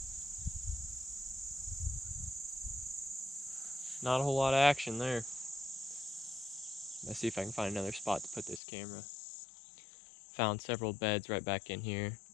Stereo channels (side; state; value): right; drops out; at 8.6 s